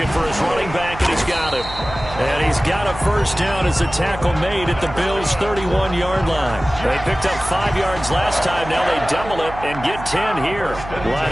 for his running back, and he's got him. And he's got a first down as the tackle made at the Bills' 31-yard line. They picked up 5 yards last time. Now they double it and get 10 here. Line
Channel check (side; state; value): right; noise; hum, 12 dB below the sound